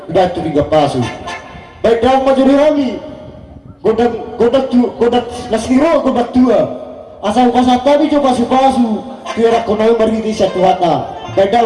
batu tiga pasu. Baik dalam majuri kami. Godak nasiro godak tua. Asal kasatabi coba pasu. Tiara konai margiti satu hata. Baik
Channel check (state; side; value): identical; both; correlation 1.00